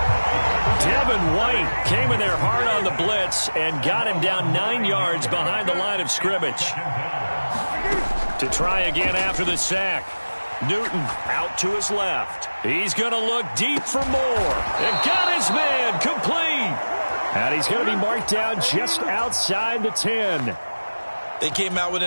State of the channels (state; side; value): inverted; both; correlation -1.00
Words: Devin White came in there hard on the blitz and got him down 9 yards behind the line of scrimmage. To try again after the sack. Newton out to his left. He's going to look deep for more. And got his man complete. And he's going to be marked down just outside the 10. They came out with